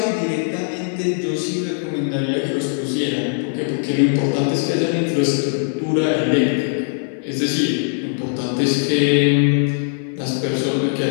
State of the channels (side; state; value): right; silent; 66 dB below the other